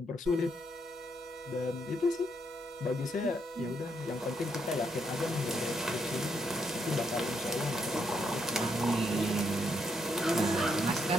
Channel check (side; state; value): both; normal; correlation 0.77